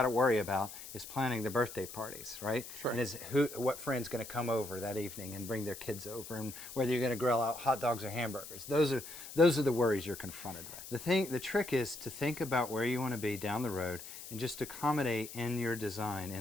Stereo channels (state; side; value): noise; left; hiss, 12 dB below the sound